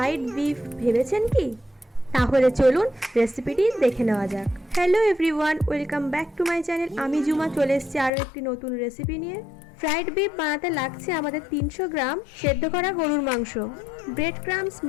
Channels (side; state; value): right; drops out; at 8.1 s